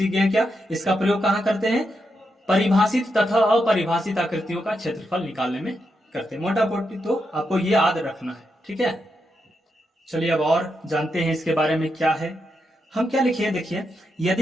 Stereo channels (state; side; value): normal; both; correlation 0.84